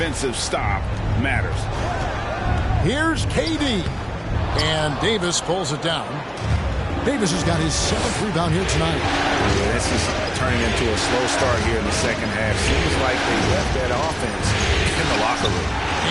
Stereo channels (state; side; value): identical; both; correlation 1.00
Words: stop matters. Here's KD. And Davis pulls it down. Davis has got his 7th rebound here tonight. Yeah, this is turning into a slow start here in the second half. Seems like they left that offense in the locker room.